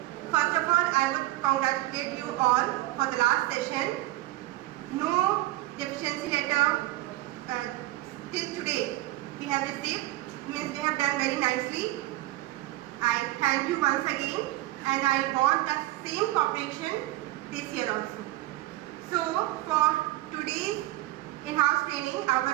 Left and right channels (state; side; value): quieter; left; 17.0 dB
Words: First of all, I would congratulate you all for the last session. No deficiency letter till today we have received, means we have done very nicely. I thank you once again, and I want the same cooperation this year also. So for today's in-house training,